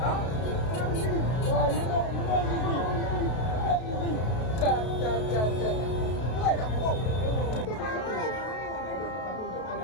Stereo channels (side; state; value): right; late; 32 ms